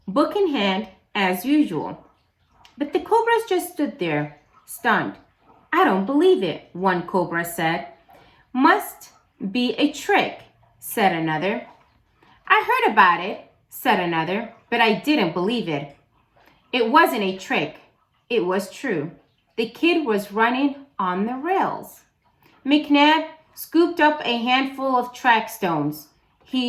book in hand as usual. But the Cobras just stood there, stunned. I don't believe it, one Cobra said. Must be a trick, said another. I heard about it, said another, but I didn't believe it. It wasn't a trick. It was true. The kid was running on the rails. McNab scooped up a handful of track stones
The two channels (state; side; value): identical; both; correlation 1.00